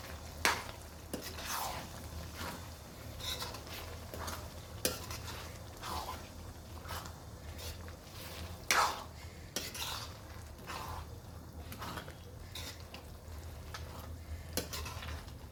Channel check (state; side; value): identical; both; correlation 1.00